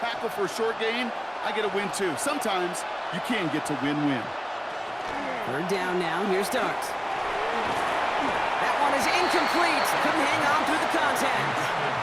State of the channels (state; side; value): identical; both; correlation 1.00